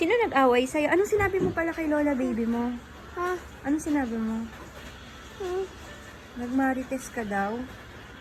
nag-away sa'yo? Anong sinabi mo pala kay Lola baby mo? Ha? Anong sinabi mo? Nagmarites ka daw?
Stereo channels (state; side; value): identical; both; correlation 1.00